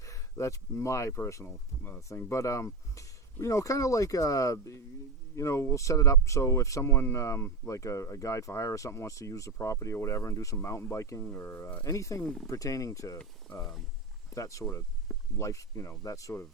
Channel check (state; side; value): quieter; left; 3.7 dB